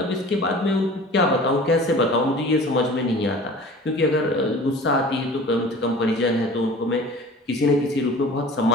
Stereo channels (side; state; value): both; normal; correlation 0.43